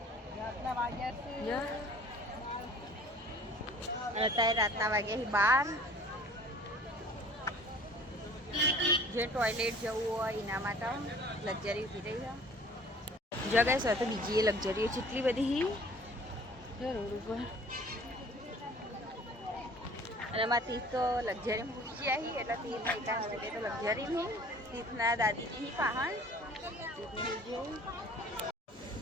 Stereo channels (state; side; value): normal; both; correlation 0.50